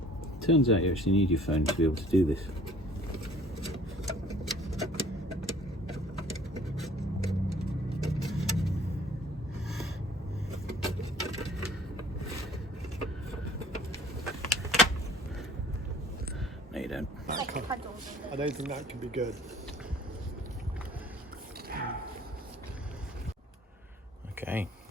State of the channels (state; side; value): normal; both; correlation 0.54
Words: turns out you actually need your phone to be able to do this. No, you don't. I don't think that can be good. Okay,